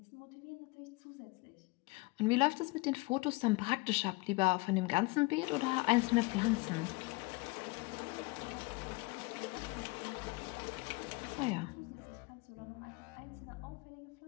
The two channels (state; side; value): quieter; right; 25.6 dB